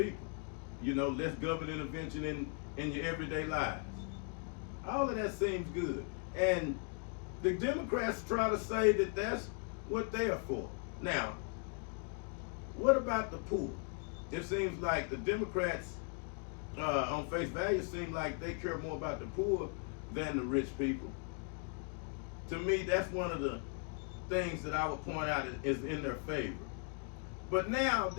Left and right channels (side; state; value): right; quieter; 36.5 dB